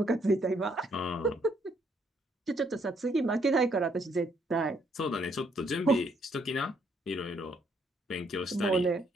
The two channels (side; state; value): both; normal; correlation 0.70